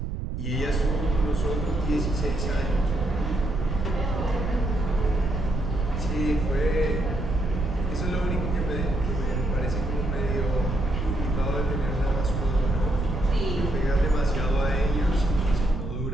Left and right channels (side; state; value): right; noise; rumble, 4 dB below the sound